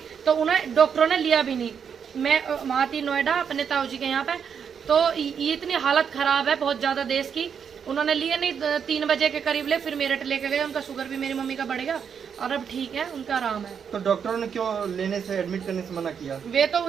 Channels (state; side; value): quieter; left; 7.2 dB